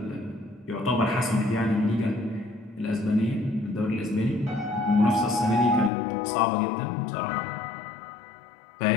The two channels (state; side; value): drops out; right; at 5.9 s